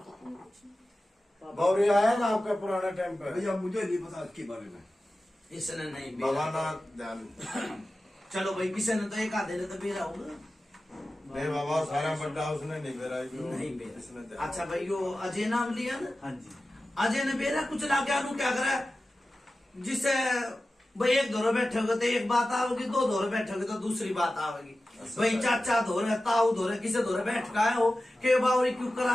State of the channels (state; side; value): normal; both; correlation 0.95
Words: गौरी आया ना आपका पुराना टाइम पे? भैया मुझे नहीं पता इसके बारे में। इसने नहीं बाबा ना ध्यान। चलो भाई किसी ने तो एक आधे ने तो बेरा होगा। नहीं बाबा सारा बड्डा उसने नहीं बेरा। नहीं बेरा। अच्छा भाई यो अजय नाम लिया ना? हाँ जी। अजय ने बेरा कुछ ला के क्या करा जिसे भाई एक दौरे बैठोगे तो एक बात आओगी, दो दौरे बैठोगे तो दूसरी बात आवेगी। भाई चाचा धोरे ताऊ धोरे किसे धोरे बैठ का हो के बावरी क्यों